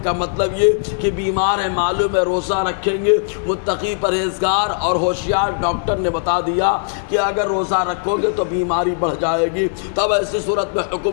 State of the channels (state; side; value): silent; right; digital silence